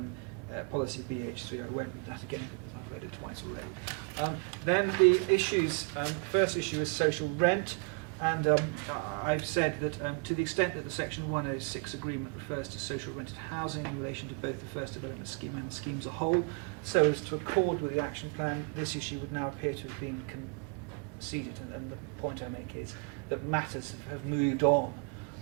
policy BH3. I won't read that again because I've read it twice already. Then the issues. First issue is social rent, and I've said that to the extent that the Section 106 agreement refers to social rented housing in relation to both the first development scheme and the scheme as a whole, so as to accord with the action plan, this issue would now appear to have been conceded. And the point I make is that matters have moved on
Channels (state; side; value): quieter; left; 36.3 dB